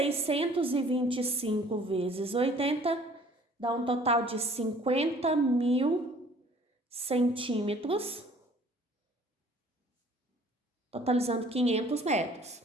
vezes 80 dá um total de 50.000 centímetros, totalizando 500 metros.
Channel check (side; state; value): both; normal; correlation 0.54